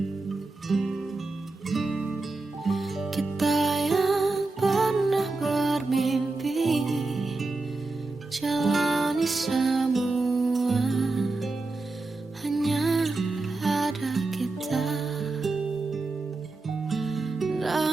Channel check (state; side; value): quieter; left; 3.4 dB